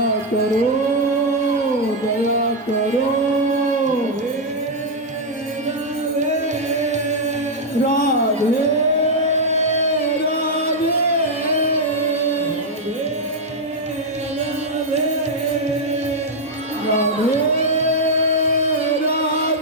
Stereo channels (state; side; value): normal; both; correlation -0.02